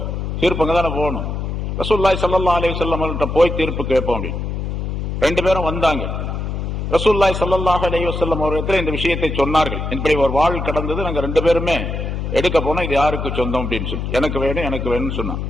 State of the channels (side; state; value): left; noise; hum, 3 dB below the sound